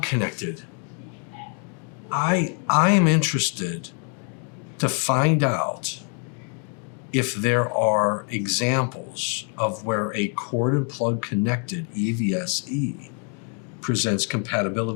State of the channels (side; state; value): right; quieter; 39.6 dB